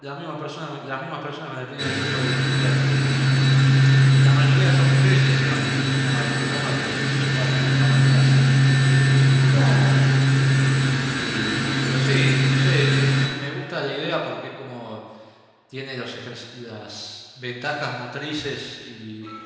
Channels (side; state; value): both; identical; correlation 1.00